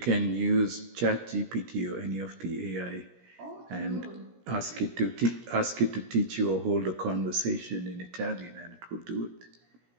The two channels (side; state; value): left; late; 17 ms